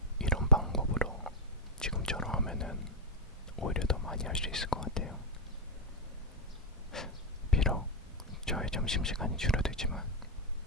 이런 방법으로 지금처럼 하면은 오히려 더 많이 할 수 있을 것 같아요. 비록 저의 점심시간이 줄어들지만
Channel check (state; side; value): normal; both; correlation 0.01